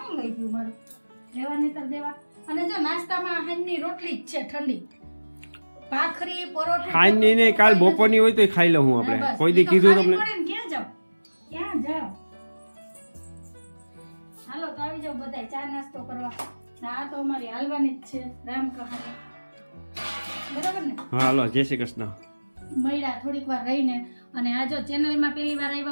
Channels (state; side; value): inverted; both; correlation -1.00